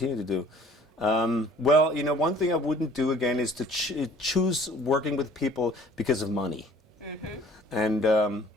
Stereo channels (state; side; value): normal; both; correlation 0.53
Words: to do. Well, you know, one thing I wouldn't do again is to choose working with people because of money.